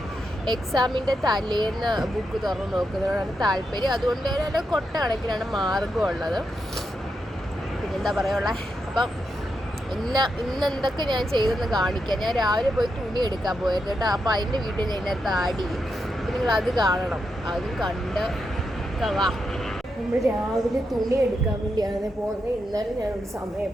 എക്സാമിൻ്റെ തലേന്ന് ബുക്ക് തുറന്ന് നോക്കുന്നതിനോടാണ് താല്പര്യം. അതുകൊണ്ട് തന്നെ കൊട്ട കണക്കിനാണ് മാർഗം ഉള്ളത്. പിന്നെന്താ പറയുക, അപ്പം ഇന്ന് എന്തൊക്കെ ഞാൻ ചെയ്തെന്ന് കാണിക്കാം. ഞാൻ രാവിലെ പോയി തുണി എടുക്കാൻ പോയിരുന്നു കേട്ടോ. അപ്പോൾ അതിൻ്റെ വീഡിയോ ഞാൻ ഇതിനകത്ത് ആഡ് ചെയ്യും. അപ്പം നിങ്ങളത് കാണണം. അതും കണ്ട് വാ. നമ്മൾ രാവിലെ തുണി എടുക്കാൻ വേണ്ടിയാണ് പോകുന്നത്. ഇന്നലെ ഞാനൊരു സമയം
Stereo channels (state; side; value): normal; both; correlation 0.84